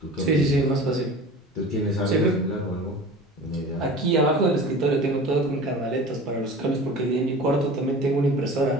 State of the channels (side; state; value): both; normal; correlation 0.38